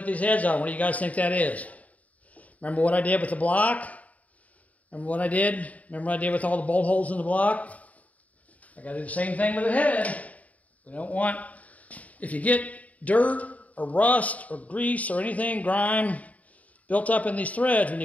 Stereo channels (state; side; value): late; right; 0.070 ms